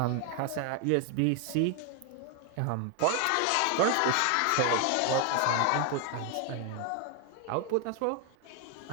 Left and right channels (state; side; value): different; both; correlation 0.01